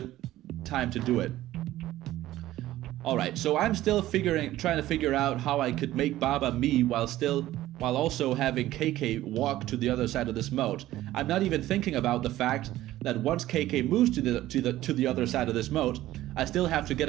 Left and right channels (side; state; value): left; quieter; 15.0 dB